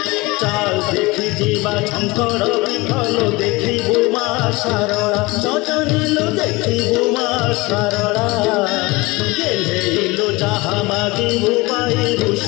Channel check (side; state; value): right; quieter; 23.0 dB